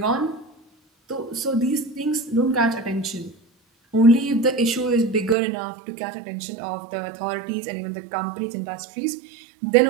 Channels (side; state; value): left; drops out; at 5.4 s